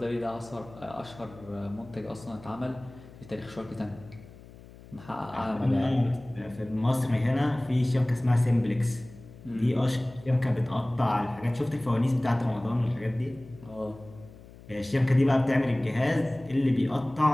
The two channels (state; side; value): noise; left; hum, 20 dB below the sound